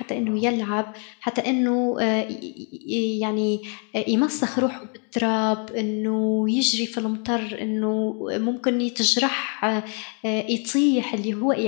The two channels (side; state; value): right; quieter; 39.4 dB